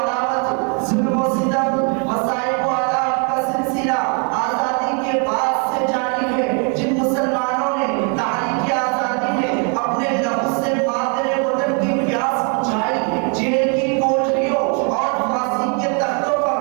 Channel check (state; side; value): quieter; left; 38.5 dB